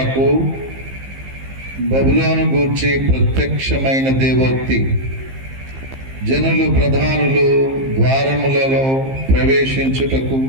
బబులోను గూర్చి ప్రత్యక్షమైన దేవోక్తి. జనులు ప్రధానులు ద్వారములలో ప్రవేశించుటకు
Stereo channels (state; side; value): late; left; 15 ms